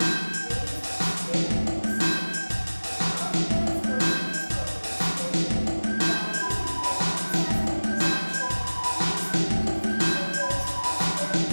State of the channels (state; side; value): inverted; both; correlation -1.00